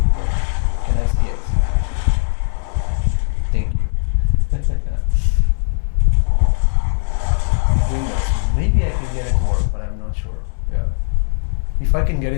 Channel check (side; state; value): right; silent; digital silence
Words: can I see it? Thank you. Windows. Maybe I can get it to work, but I'm not sure. Yeah. If I can get